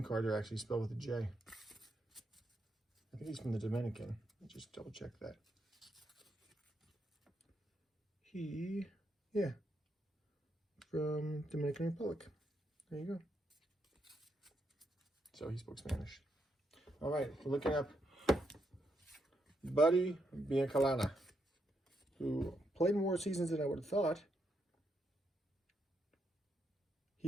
cards are actually spelled with a J. I think he's from the Dominican. Let's just double check that. Yeah, from Dominican Republic. There you go. So he spoke Spanish. All right, we're looking up Buddy Biancalana, who played more seasons than I would have thought.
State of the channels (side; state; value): both; normal; correlation 0.80